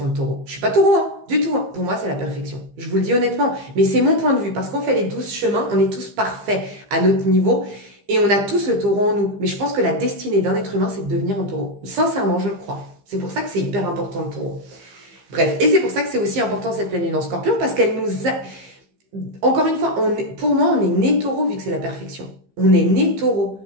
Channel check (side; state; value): left; late; 15 ms